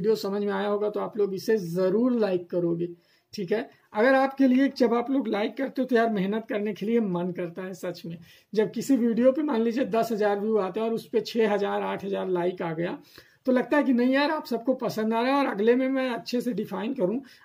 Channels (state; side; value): identical; both; correlation 1.00